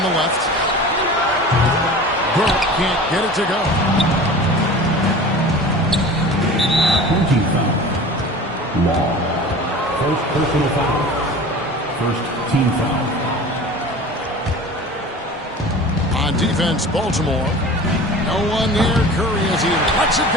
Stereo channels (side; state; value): both; normal; correlation 0.38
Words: the left. Burke can't get it to go. 20 foul. Law. First personal foul. First team foul. On defense, Baltimore. No one near Curry as he lets it